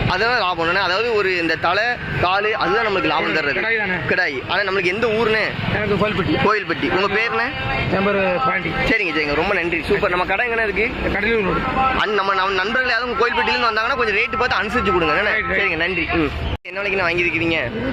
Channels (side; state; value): both; identical; correlation 1.00